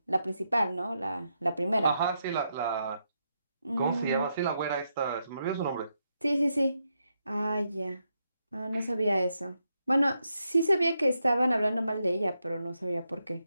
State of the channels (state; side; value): inverted; both; correlation -0.82